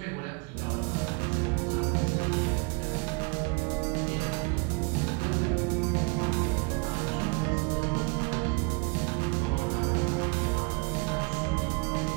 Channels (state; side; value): quieter; left; 31.0 dB